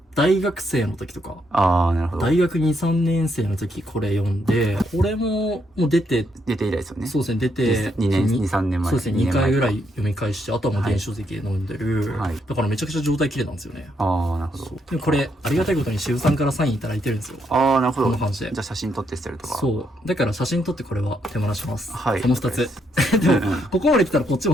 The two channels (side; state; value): both; normal; correlation 0.76